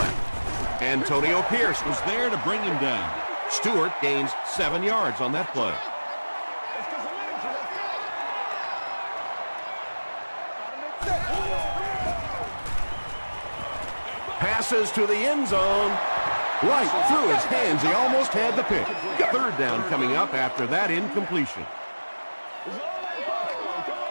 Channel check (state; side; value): inverted; both; correlation -1.00